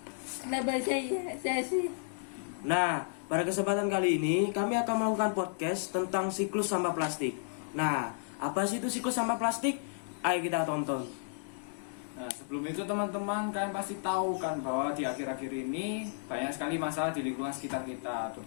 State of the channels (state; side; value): silent; right; digital silence